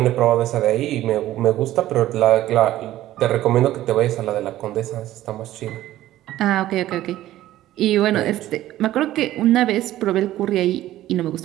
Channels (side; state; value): left; quieter; 14.3 dB